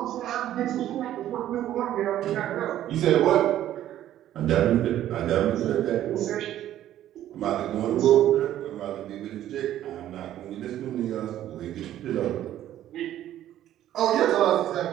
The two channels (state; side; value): quieter; left; 12.3 dB